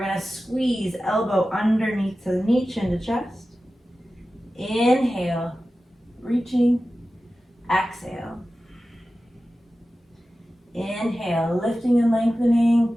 going to squeeze elbow underneath to the knee, chin to chest. Inhale, reaching, exhale. Inhale, lifting and lengthening,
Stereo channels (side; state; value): both; normal; correlation 0.94